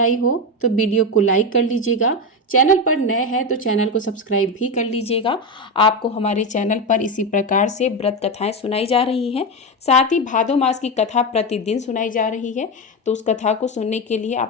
आई हो तो वीडियो को लाइक कर लीजिएगा। चैनल पर नए हैं तो चैनल को सब्सक्राइब भी कर लीजिएगा। आपको हमारे चैनल पर इसी प्रकार से व्रत कथाएं सुनाई जा रही हैं। साथ ही भादो मास की कथा प्रतिदिन सुनाई जा रही है। तो उस कथा को सुनने के लिए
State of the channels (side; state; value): both; normal; correlation 0.14